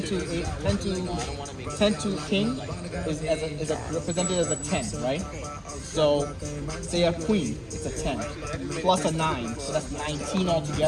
to king is represented as a 10, right? So say a queen, it's a 10, plus a 9, so that's 19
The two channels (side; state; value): both; identical; correlation 1.00